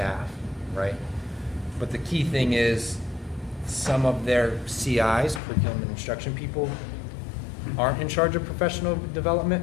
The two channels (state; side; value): drops out; right; at 5.4 s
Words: right? But the key thing is some of their CIs, curriculum and instruction people, aren't in charge of professional